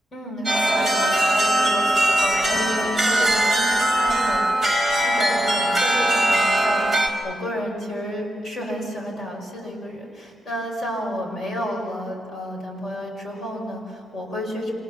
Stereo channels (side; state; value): both; normal; correlation 0.86